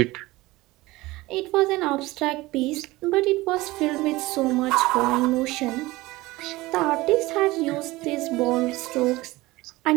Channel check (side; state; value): left; quieter; 19.8 dB